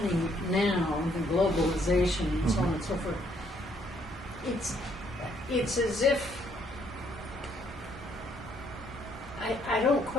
now, the globalization and so on and so forth. It's as if I don't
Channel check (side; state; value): both; normal; correlation 0.68